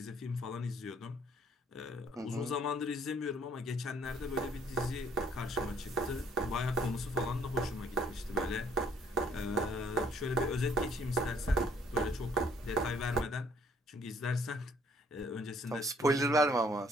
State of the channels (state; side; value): normal; both; correlation 0.63